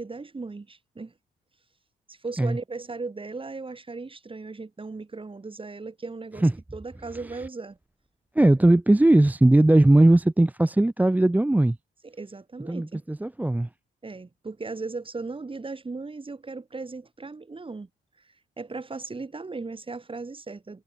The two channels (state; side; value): normal; both; correlation 0.98